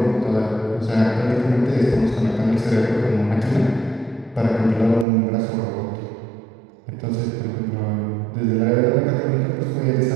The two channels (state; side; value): drops out; left; at 5.1 s